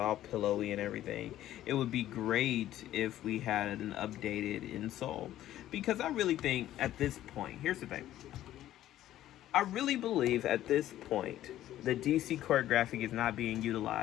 pillowy and everything. It would be great if we had an updated insole, because I really think at this point, here's the thing. I really believe at this point the DC Court Graphic is not being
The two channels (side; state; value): right; quieter; 13.2 dB